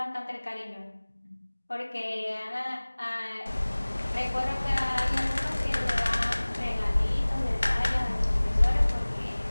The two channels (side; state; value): both; inverted; correlation -1.00